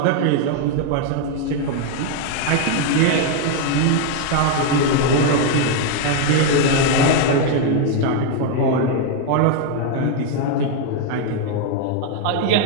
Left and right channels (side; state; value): both; different; correlation 0.00